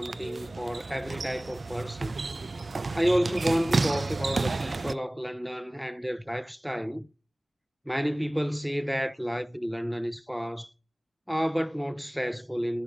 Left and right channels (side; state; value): both; normal; correlation 0.98